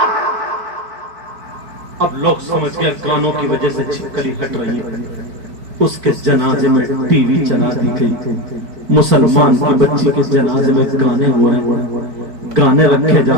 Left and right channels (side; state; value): left; late; 4.5 ms